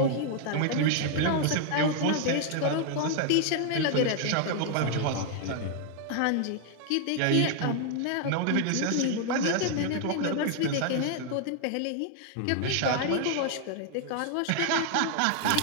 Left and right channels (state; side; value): different; both; correlation 0.00